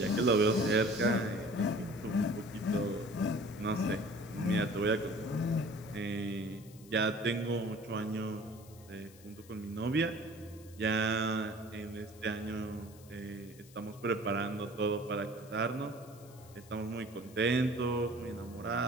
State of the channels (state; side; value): noise; left; hiss, 23 dB below the sound